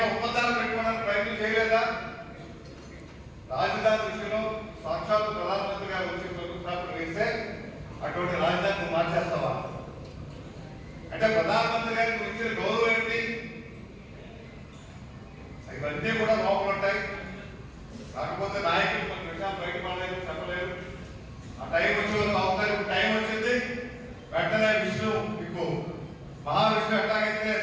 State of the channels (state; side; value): identical; both; correlation 1.00